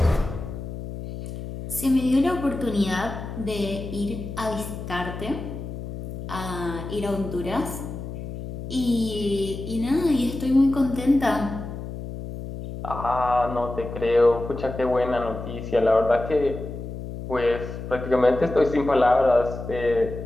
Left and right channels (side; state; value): left; noise; hum, 8 dB below the sound